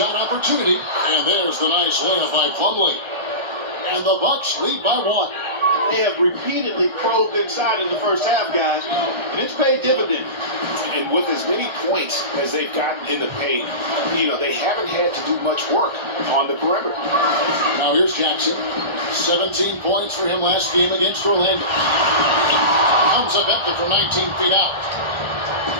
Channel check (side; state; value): left; late; 1.4 ms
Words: opportunity. And there's the nice layup by Plumlee. And the Bucks lead by 1. They have repeatedly probed inside in the first half, guys, and it's paid dividends. And with as many points as they've gotten in the paint, they haven't had to do much work on the perimeter. Now here's Jackson. 17 points for him last game against Orlando. Comes up empty from 19 feet out.